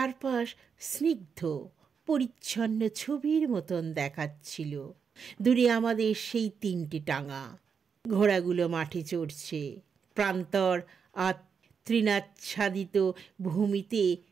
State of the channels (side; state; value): left; quieter; 6.3 dB